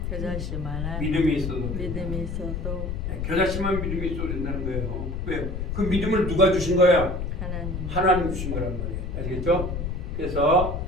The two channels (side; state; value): left; noise; rumble, 3 dB below the sound